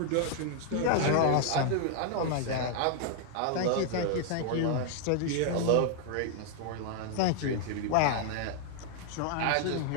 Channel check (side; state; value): both; different; correlation 0.00